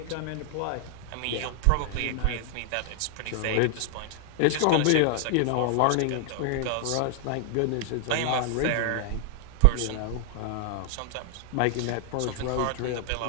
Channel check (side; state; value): both; different; correlation 0.00